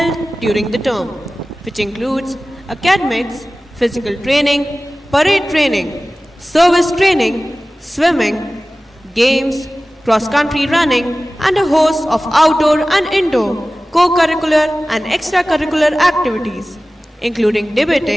during the term, which includes academics, physical training, parade training, service training, swimming, games, cross-country running, and a host of outdoor and indoor co-curricular and extracurricular activities, including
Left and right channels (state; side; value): normal; both; correlation 0.97